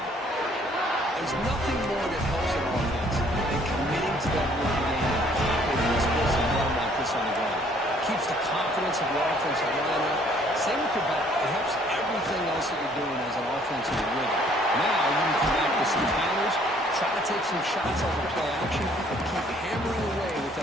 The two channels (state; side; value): normal; both; correlation 0.61